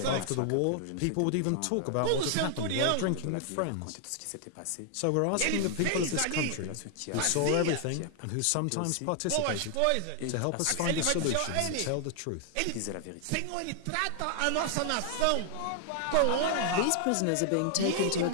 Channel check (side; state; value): both; different; correlation 0.00